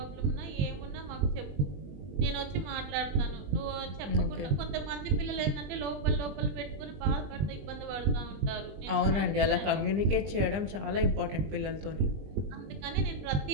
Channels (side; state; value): left; late; 20 ms